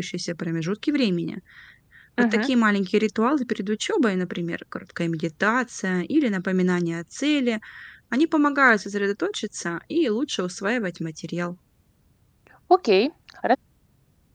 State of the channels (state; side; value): identical; both; correlation 1.00